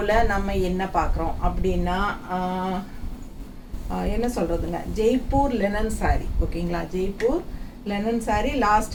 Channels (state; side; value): identical; both; correlation 1.00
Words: நம்ம என்ன பார்க்குறோம் அப்படின்னா என்ன சொல்கிறதுங்க, ஜெய்ப்பூர் லெனன் சாரீ. ஓகேங்களா, Jaipur linen sari last